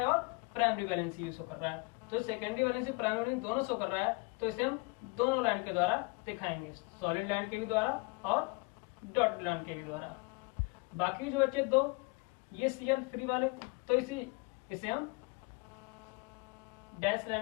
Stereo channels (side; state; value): right; quieter; 29.8 dB